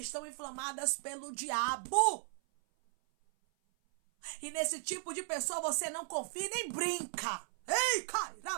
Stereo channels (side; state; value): left; silent; 54 dB below the other